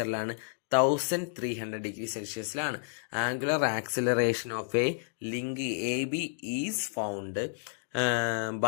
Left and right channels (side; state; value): right; silent; digital silence